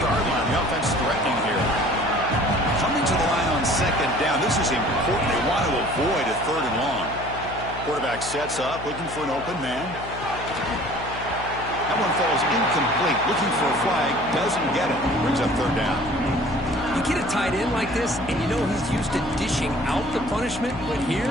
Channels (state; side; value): noise; left; hum, 12 dB below the sound